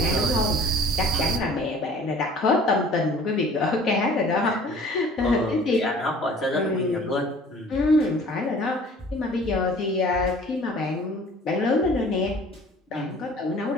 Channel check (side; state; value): both; normal; correlation 0.49